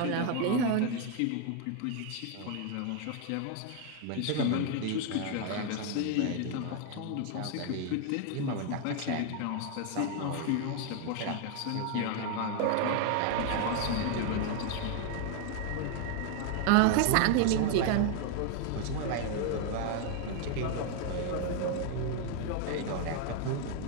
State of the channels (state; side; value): different; both; correlation 0.01